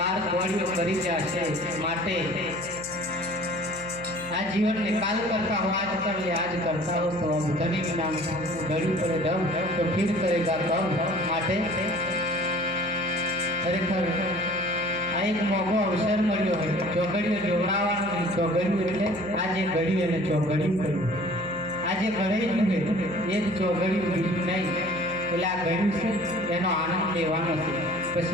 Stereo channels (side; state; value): right; noise; hum, 17 dB below the sound